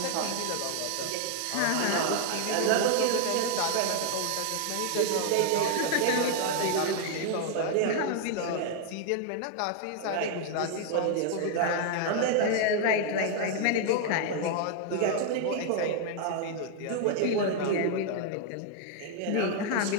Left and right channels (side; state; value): both; different; correlation 0.00